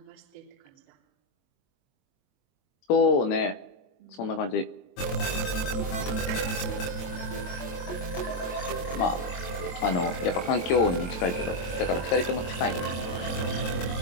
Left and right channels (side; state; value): right; late; 22 ms